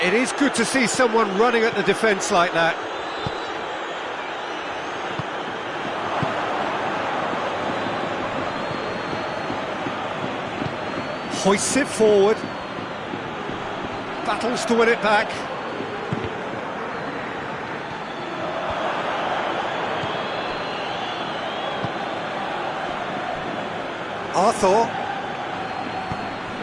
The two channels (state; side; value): identical; both; correlation 1.00